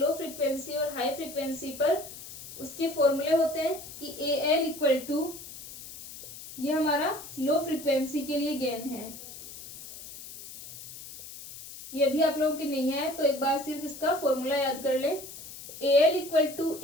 फ्रीक्वेंसी और हाई फ्रीक्वेंसी पर, उसके फॉर्मूले होते हैं कि ए एल इक्वल टू, ये हमारा लो फ्रीक्वेंसी के लिए गेन है। ये अभी आप लोगों के नहीं है तो एक बार सिर्फ इसका फॉर्मूला याद कर ले। A L equal to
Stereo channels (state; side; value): noise; left; hiss, 13 dB below the sound